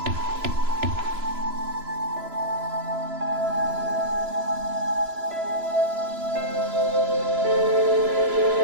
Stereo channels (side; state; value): left; late; 3.0 ms